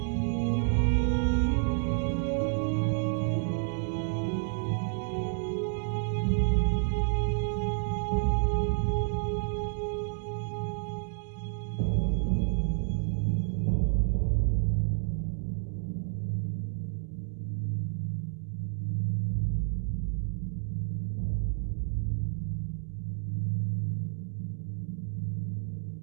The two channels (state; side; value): silent; left; 58 dB below the other